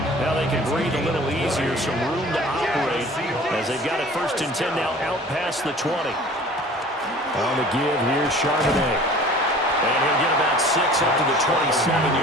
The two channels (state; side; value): normal; both; correlation 0.45